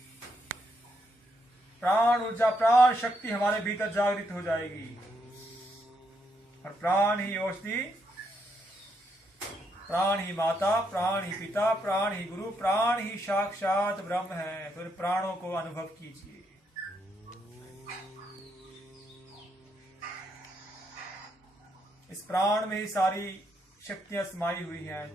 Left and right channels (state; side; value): normal; both; correlation 0.78